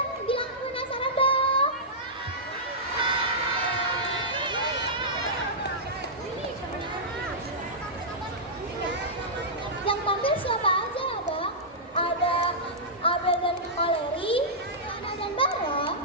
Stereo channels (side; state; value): both; normal; correlation -0.13